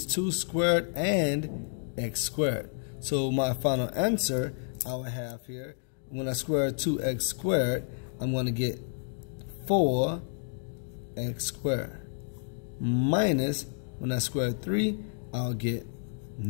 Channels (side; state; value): right; silent; digital silence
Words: 2 squared and x squared. So my final answer I will have here, when I square 2x squared, I'm going to get 4x squared. Minus, when I square 3, I'll get